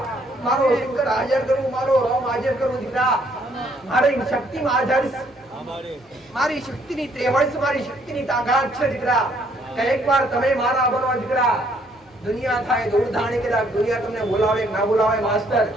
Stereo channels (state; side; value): normal; both; correlation 0.66